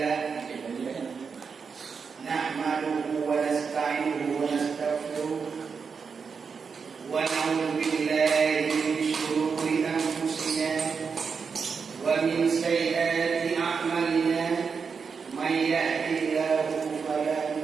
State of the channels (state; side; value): quieter; left; 5.6 dB